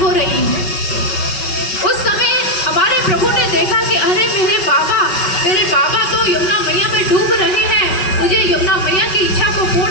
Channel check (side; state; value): right; late; 5.3 ms